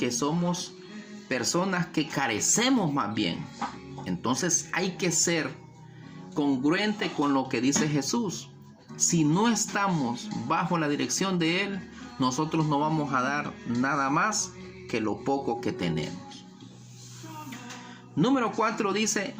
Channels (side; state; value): both; identical; correlation 1.00